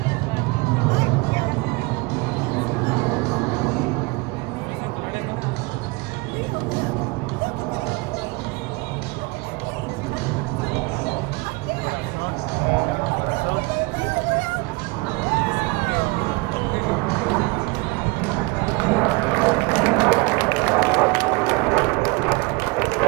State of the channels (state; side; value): quieter; left; 25.1 dB